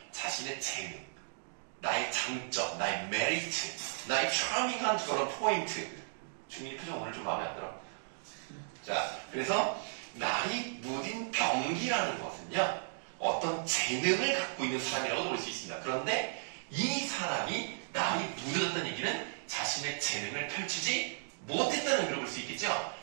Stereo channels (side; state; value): left; silent; digital silence